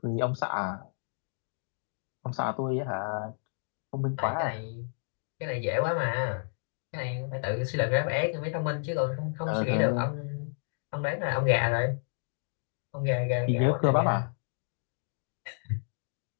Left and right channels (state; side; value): silent; right; digital silence